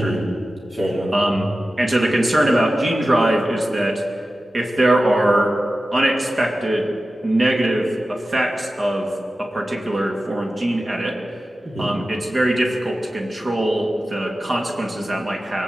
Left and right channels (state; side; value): normal; both; correlation 0.94